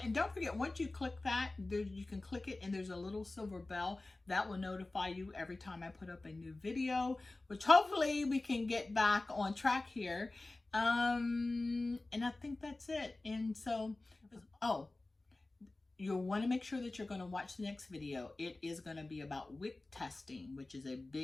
And don't forget, once you click that, you can click it and there's a little silver bell that will notify you every time I put up a new video, which hopefully we can get back on track here. And I think that's it. And so, you'll want to make sure that you're going to watch the next video. It is going to be about wick testing, which is a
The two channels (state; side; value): quieter; right; 3.0 dB